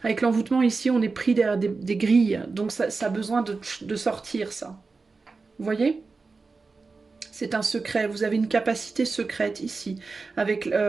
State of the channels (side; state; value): left; quieter; 4.2 dB